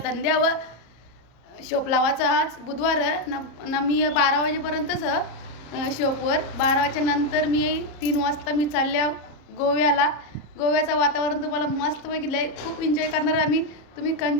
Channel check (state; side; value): late; right; 34 ms